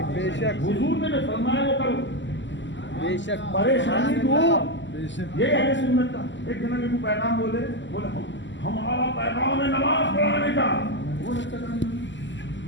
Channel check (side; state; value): right; late; 0.54 ms